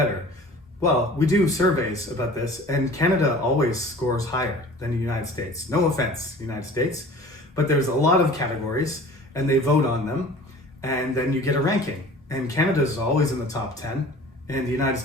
Well, we do surveys about this, and Canada always scores higher than the United States. No offense, United States, but there's a lot of categories, and they vote on them, and then you get a ranking. And Canada is always in the top 10, and the United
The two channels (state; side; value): normal; both; correlation 0.44